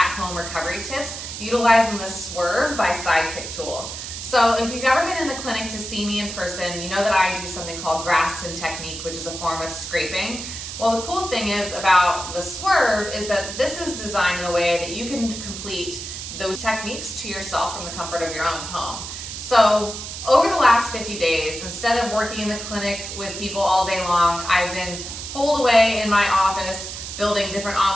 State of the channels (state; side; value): noise; right; hiss, 8 dB below the sound